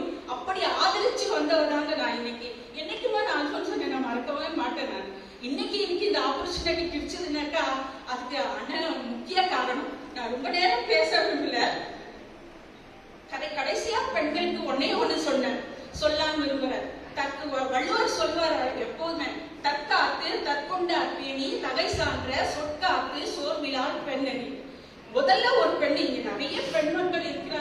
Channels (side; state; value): both; identical; correlation 1.00